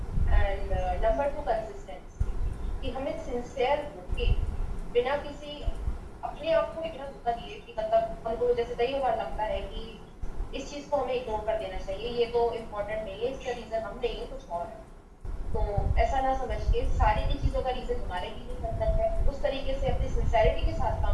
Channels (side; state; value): both; identical; correlation 1.00